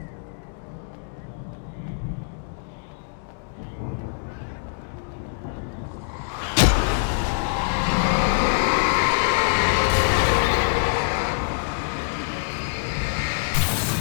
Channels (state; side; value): silent; right; digital silence